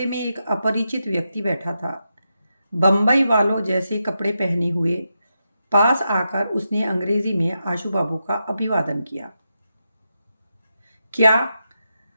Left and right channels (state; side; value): inverted; both; correlation -0.87